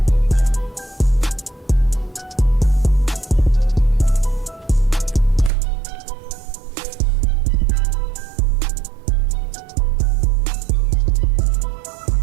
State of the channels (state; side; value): drops out; left; at 5.5 s